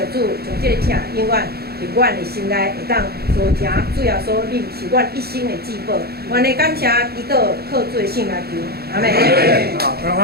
主，将这个疼永远伫阮的心内会当做成。主要说，你是阮一生的至宝。阮的感谢祈祷，靠主的圣名求，阿门。好，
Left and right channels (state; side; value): late; left; 0.46 ms